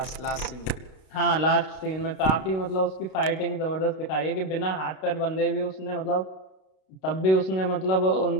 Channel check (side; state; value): right; late; 32 ms